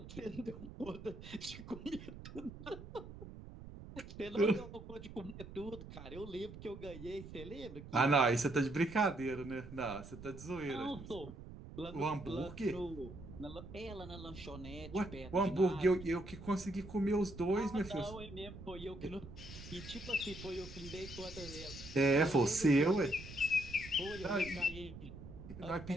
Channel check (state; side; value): noise; right; rumble, 13 dB below the sound